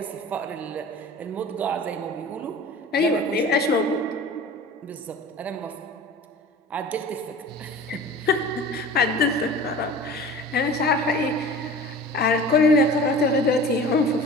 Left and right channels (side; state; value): both; normal; correlation 0.40